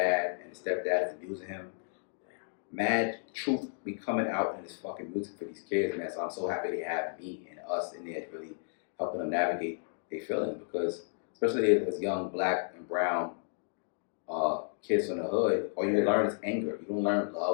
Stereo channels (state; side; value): silent; right; digital silence